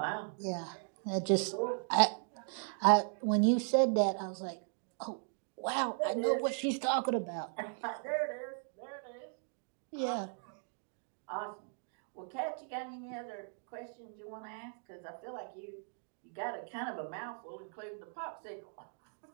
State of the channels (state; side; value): silent; left; 53 dB below the other